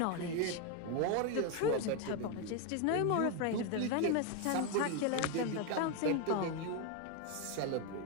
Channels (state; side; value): different; both; correlation 0.01